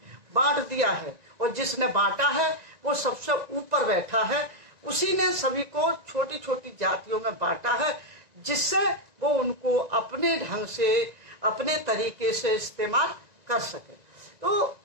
बांट दिया है और जिसने बांटा है वो सबसे ऊपर बैठा है। उसी ने सभी को छोटी छोटी जातियों में बांटा है जिससे वो उनको अपने ढंग से, अपने तरीके से इस्तेमाल कर सके। तो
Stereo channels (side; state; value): left; late; 1.9 ms